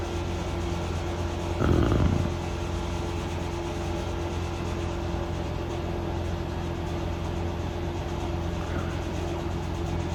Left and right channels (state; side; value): identical; both; correlation 1.00